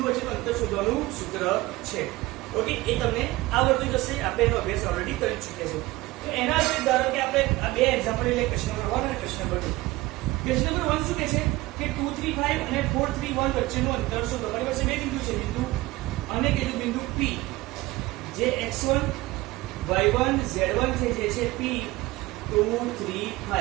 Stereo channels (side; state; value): left; quieter; 19.5 dB